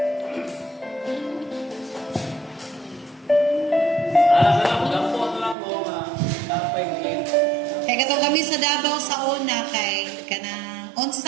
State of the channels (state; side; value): drops out; left; at 5.6 s